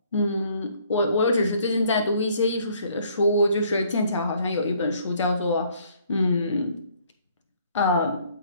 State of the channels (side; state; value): both; inverted; correlation -0.63